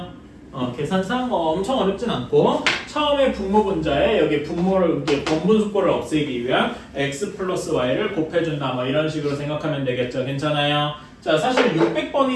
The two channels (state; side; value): identical; both; correlation 1.00